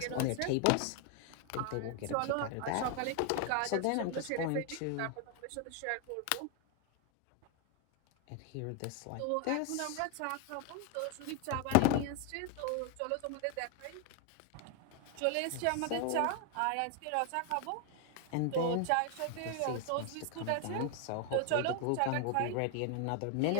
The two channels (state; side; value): different; both; correlation 0.01